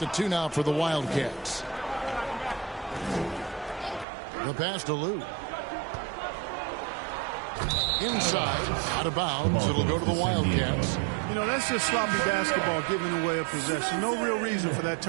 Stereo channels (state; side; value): drops out; left; at 4.0 s